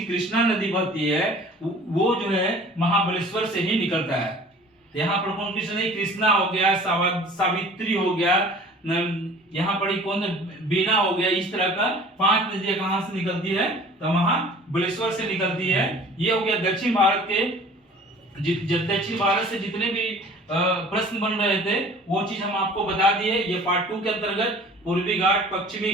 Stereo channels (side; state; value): both; normal; correlation 0.47